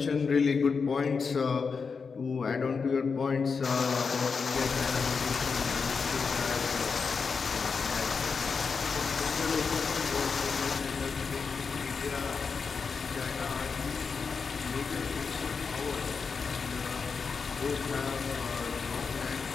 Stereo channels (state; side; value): quieter; right; 5.3 dB